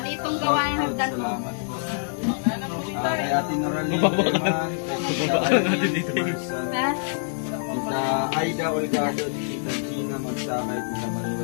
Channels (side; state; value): right; silent; digital silence